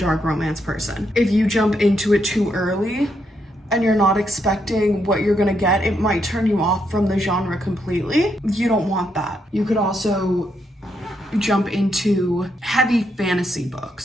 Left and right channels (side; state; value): both; normal; correlation 0.79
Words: romance person. If you jump into it too early and you're not expecting what you're gonna get, it might turn you off from the genre completely. You don't want that. You could also jump into heavy fantasy